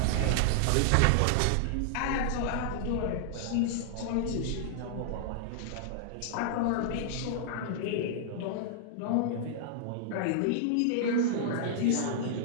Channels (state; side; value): different; both; correlation -0.01